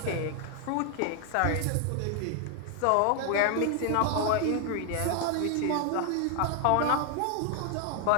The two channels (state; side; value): different; both; correlation 0.00